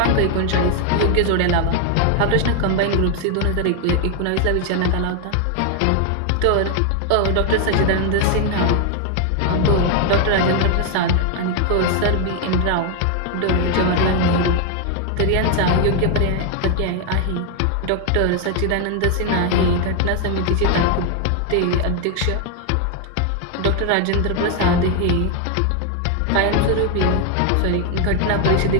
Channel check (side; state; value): both; different; correlation 0.01